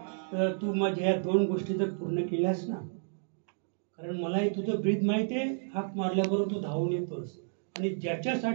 तू माझ्या या 2 गोष्टी जर पूर्ण केल्यास ना, कारण मलाही तुझं ब्रीद माहिती आहे, हाक मारल्याबरोबर तू धावून येतोस. आणि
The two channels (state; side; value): silent; left; digital silence